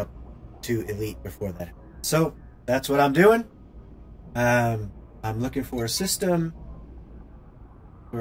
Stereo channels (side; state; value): both; identical; correlation 1.00